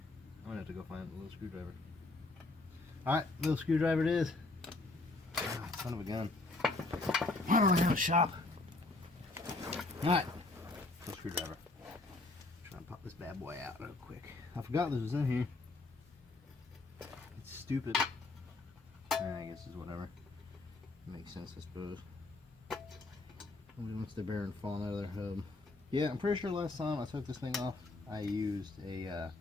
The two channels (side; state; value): right; quieter; 3.2 dB